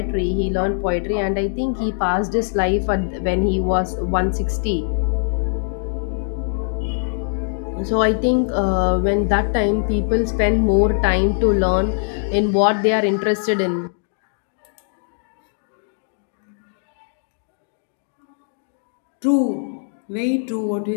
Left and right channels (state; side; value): silent; right; digital silence